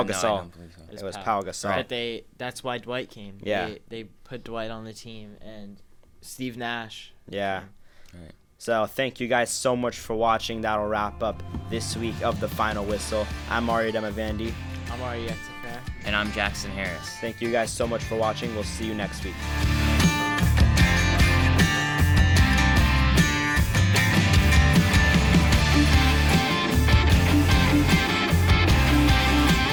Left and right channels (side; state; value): both; identical; correlation 1.00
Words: No, I Gasol. don't believe so. It was Pau Gasol. But that's why Dwight came. Yeah. They put Dwight on the team, and Steve Nash. Yeah. Right. So thank you guys so much for watching. That'll wrap up this week of The Final Whistle. I'm Aria Damavandi. I'm Arya Yektafar. And I'm Jackson Harris. Thank you guys so much for watching. We'll see you next week.